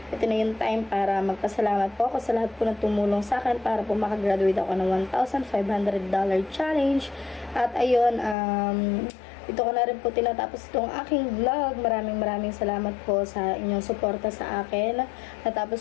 ito na yung time para magpasalamat po ako sa lahat po na tumulong sa akin para po makagraduate ako ng $1,500 challenge. At ayun, ito ko na rin po tinatapos itong aking vlog. Maraming salamat po sa inyong suporta sa akin. Natapos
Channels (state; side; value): drops out; right; at 8.3 s